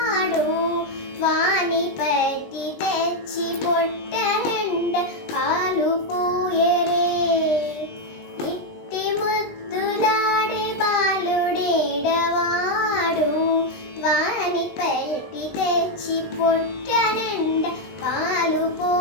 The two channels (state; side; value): late; right; 20 ms